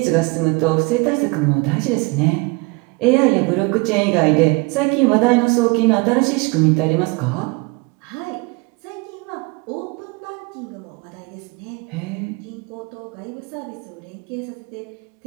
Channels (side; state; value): left; quieter; 27.1 dB